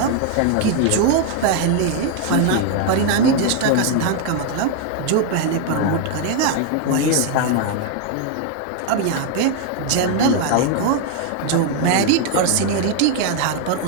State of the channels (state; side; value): different; both; correlation 0.00